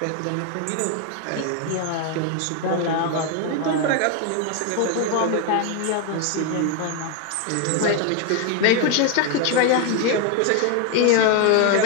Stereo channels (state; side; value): different; both; correlation 0.01